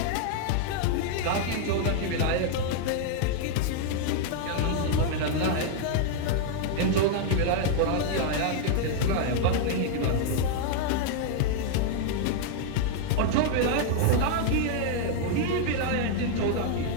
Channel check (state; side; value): different; both; correlation 0.00